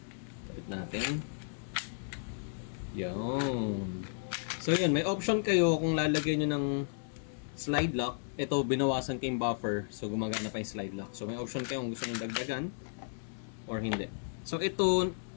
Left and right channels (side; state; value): right; silent; digital silence